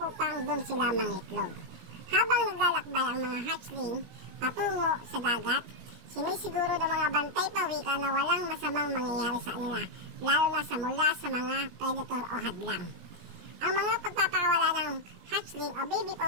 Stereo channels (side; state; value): left; late; 17 ms